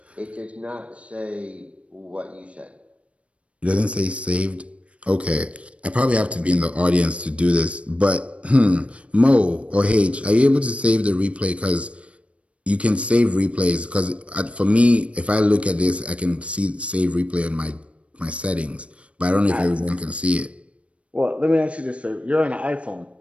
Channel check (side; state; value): left; late; 0.062 ms